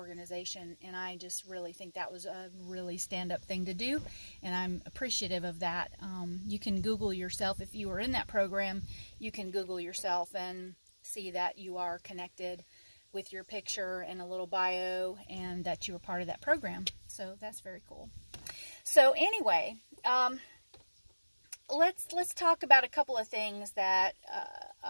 and I just really think that was a really stand-up thing to do, and I'm appreciative of that. You can Google yourself. If you were in that program, you can Google yourself and see that you are connected with your picture and a little bio, and that you were part of that program. So that's very cool. So anyway, let's talk about a couple of things that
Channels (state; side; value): inverted; both; correlation -1.00